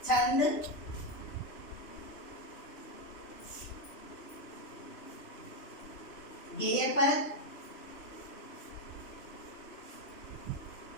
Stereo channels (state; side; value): late; right; 2.9 ms